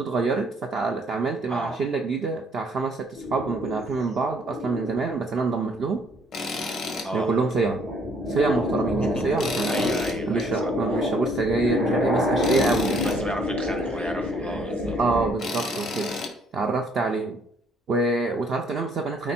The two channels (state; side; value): normal; both; correlation 0.64